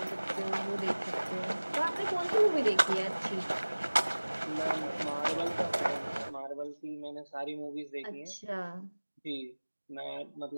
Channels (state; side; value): inverted; both; correlation -1.00